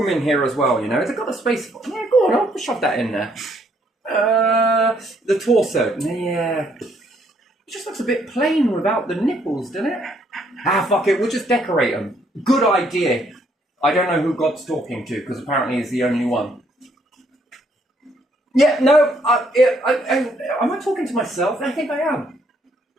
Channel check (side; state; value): both; normal; correlation 0.69